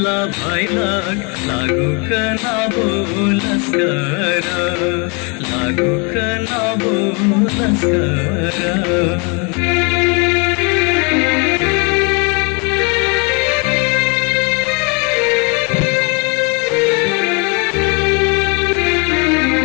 भैलक लागुक नबो लस्कर लागुक नबो लस्कर।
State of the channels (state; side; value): quieter; right; 33.3 dB